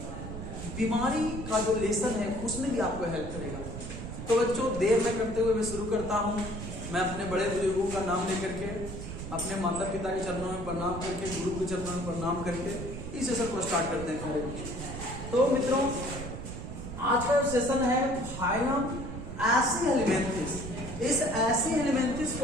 बीमारी का जो लेसन है उसमें भी आपको हेल्प करेगा। तो बच्चों, देर न करते हुए मैं शुरू करता हूँ। मैं अपने बड़े बुजुर्गों का नाम लेकर के, अपने माता पिता के चरणों में प्रणाम करके, गुरु के चरणों में प्रणाम करके इस सेशन को स्टार्ट करते हैं प्यारे बच्चों। तो मित्रों, आज का सेशन है फाइलम एसी हेलिमेंथिस। इस एसी हेलिमेंथिस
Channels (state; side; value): noise; right; rumble, 8 dB below the sound